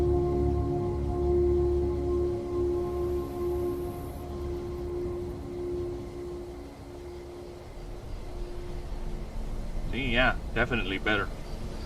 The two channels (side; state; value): both; identical; correlation 1.00